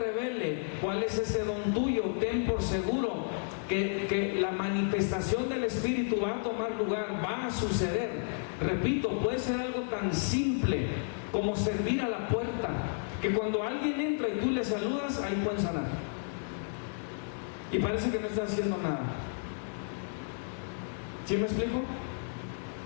cuál es ese don tuyo, ten por seguro que la manifestación del Espíritu va a tomar lugar, va a suceder. Repito, puede ser algo tan simple como servir a la puerta, que cuando alguien entra y tú le saludas, ahí pueden sanar. Y parece que no está haciendo nada. ¿Sí me explico?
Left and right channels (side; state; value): right; silent; digital silence